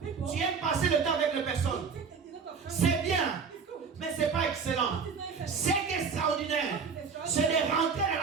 tu aimes passer le temps avec les personnes. C'est bien, mais ce n'est pas excellent. C'est extraordinaire. C'est de rentrer dans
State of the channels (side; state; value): left; quieter; 5.7 dB